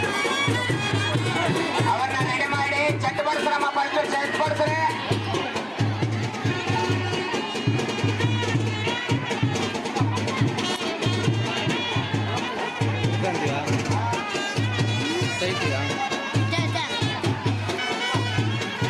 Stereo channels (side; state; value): both; identical; correlation 1.00